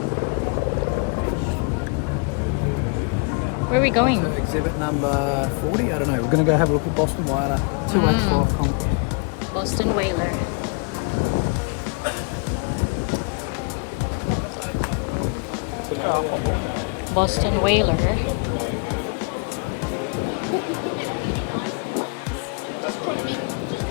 Where are we going? Exhibit number 40. I don't know. We're going to go have a look at Boston Whaler 285 concrete. Boston Whaler. Boston Whaler.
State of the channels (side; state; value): right; quieter; 34.7 dB